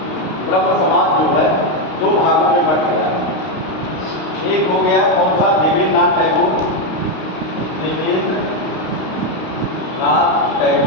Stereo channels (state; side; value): late; right; 32 ms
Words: जो है दो भागों में बट गया है। एक हो गया कौन सा, देवेंद्रनाथ टैगोर, देवेंद्रनाथ